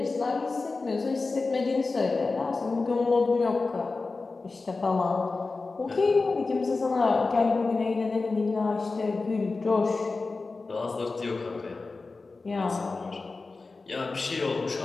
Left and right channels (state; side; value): quieter; right; 3.8 dB